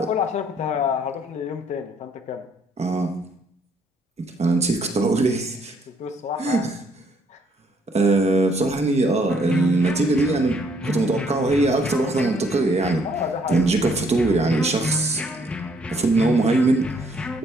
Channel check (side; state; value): both; normal; correlation 0.68